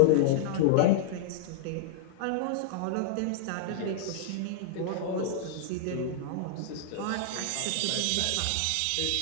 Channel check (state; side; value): different; both; correlation -0.01